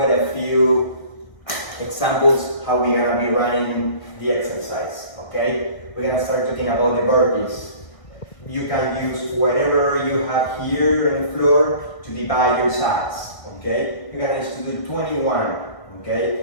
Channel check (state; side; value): late; right; 1.4 ms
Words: a few examples how we're gonna be running the exercise. Okay? We're gonna start talking about the burpees. You can use whatever you have here on the floor to divide your size. Okay? You're gonna use to do 21.